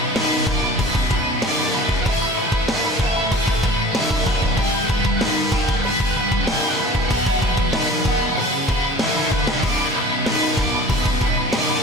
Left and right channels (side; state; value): both; normal; correlation 0.43